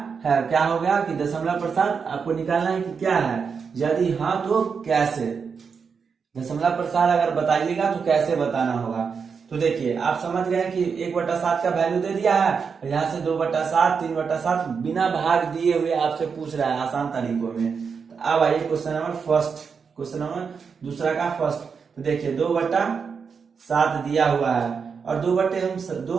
है, क्या हो गया कि दशमलव प्रसार आपको निकालना है कि क्या है, यदि हाँ तो कैसे, दशमलव प्रसार अगर बताइएगा तो कैसे बताना होगा। तो देखिए आप समझ गए कि 1/7 का वैल्यू दे दिया है, यहाँ से 2/7, 3/7 बिना भाग दिए हुए आपसे पूछ रहा है आसान तरीकों में। तो अब आइए question number first, question number दूसरा का फर्स्ट। तो देखिए 2/7 दिया हुआ है और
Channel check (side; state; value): left; quieter; 5.9 dB